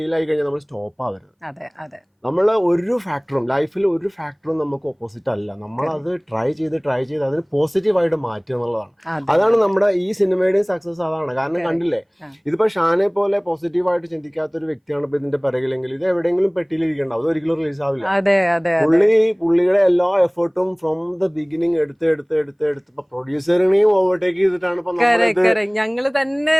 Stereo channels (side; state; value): both; identical; correlation 1.00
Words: ആയി കഴിഞ്ഞാൽ നമ്മൾ സ്റ്റോപ്പ് ആവരുത്. അതെ അതെ. നമ്മൾ ലൈഫിൽ ഒരു ഫാക്ടറും നമുക്ക് ഓപ്പോസിറ്റ് അല്ല. നമ്മളത് ട്രൈ ചെയ്ത് അതിന് പോസിറ്റീവായിട്ട് മാറ്റുക എന്നുള്ളതാണ്. അതാണ് നമ്മുടെ ഈ സിനിമയുടെയും സക്സസ് അതാണ്. കാരണം കണ്ടില്ലേ, ഇതിപ്പോ ഷാനെ പോലെ പോസിറ്റീവായിട്ട് ചിന്തിക്കാത്ത ഒരു വ്യക്തിയാണ് ഇപ്പൊ ഇതിന്റെ പിറകിലെങ്കിൽ ഇത് എവിടെയെങ്കിലും പെട്ടിയിലിരിക്കണ്ട, അത് ഒരിക്കലും റിലീസ് ആവില്ല. പുള്ളിയുടെ എല്ലാ എഫേർട്ടും ഫ്രോം ദ ബിഗിനിങ് എടുത്ത് ഇപ്പൊ പ്രൊഡ്യൂസറിനെയും ഓവർടേക്ക് ചെയ്തിട്ടാണ് ഇപ്പൊ ഞങ്ങള് തന്നെ